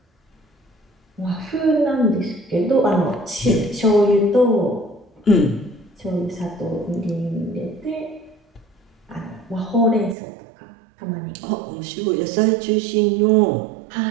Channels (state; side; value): drops out; left; at 10.2 s